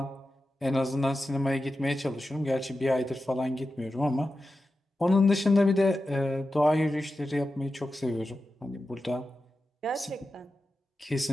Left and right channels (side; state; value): both; normal; correlation 0.92